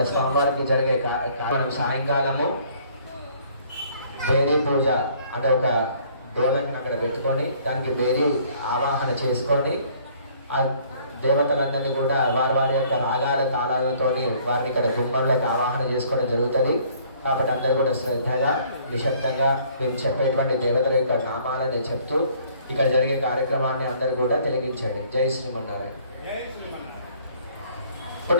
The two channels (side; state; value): both; inverted; correlation -0.59